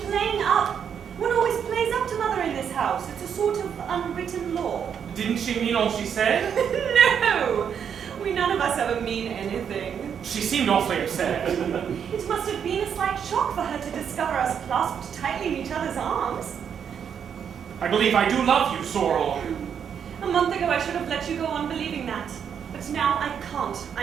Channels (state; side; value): quieter; left; 7.8 dB